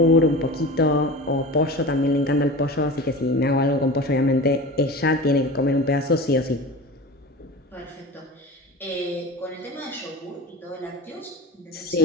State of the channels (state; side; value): normal; both; correlation 0.32